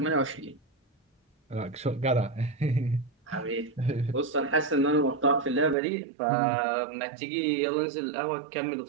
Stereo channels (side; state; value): left; drops out; at 5.8 s